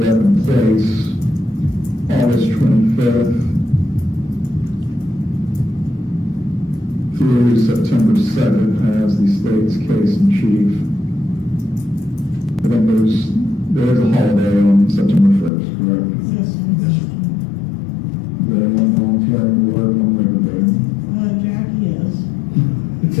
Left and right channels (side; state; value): right; drops out; at 15.5 s